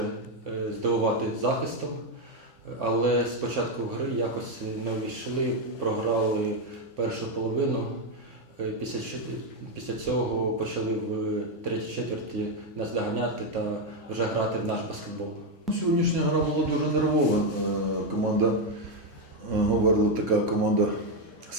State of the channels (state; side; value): normal; both; correlation 0.05